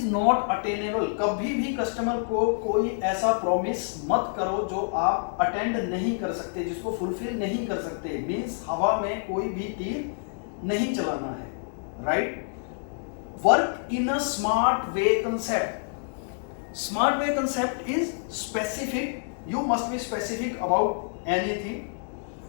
not attainable, कभी भी कस्टमर को कोई ऐसा प्रॉमिस मत करो जो आप अटेंड नहीं कर सकते, जिसको फुलफिल नहीं कर सकते, मींस हवा में कोई भी तीर नहीं चलाना है, right? Work in a smart way concept. Smart way concept is specific. You must be specific about anything.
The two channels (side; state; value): right; silent; digital silence